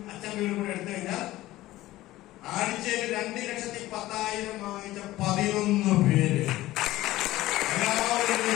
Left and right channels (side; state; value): right; quieter; 16.5 dB